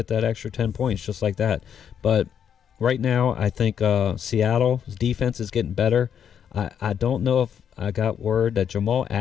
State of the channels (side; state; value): right; quieter; 8.3 dB